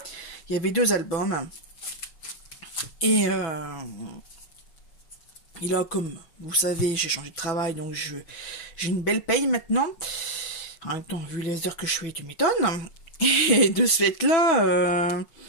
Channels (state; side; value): late; right; 6.1 ms